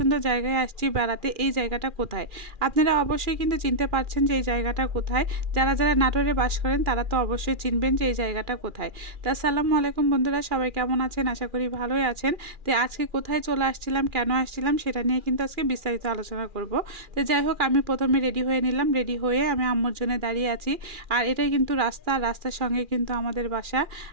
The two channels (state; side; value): late; left; 2.4 ms